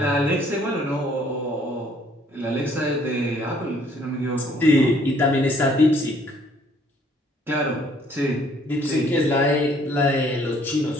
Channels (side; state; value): both; normal; correlation 0.62